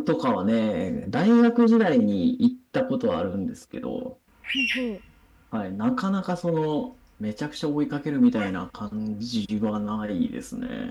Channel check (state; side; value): identical; both; correlation 1.00